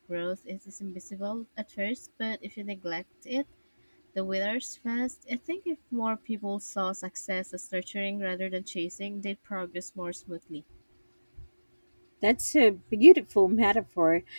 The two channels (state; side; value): inverted; both; correlation -1.00